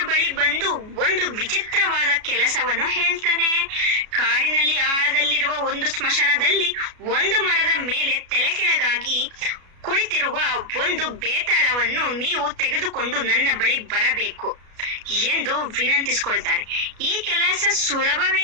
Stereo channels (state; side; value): late; left; 33 ms